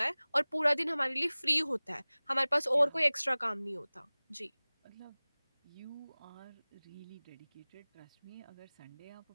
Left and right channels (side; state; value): both; inverted; correlation -1.00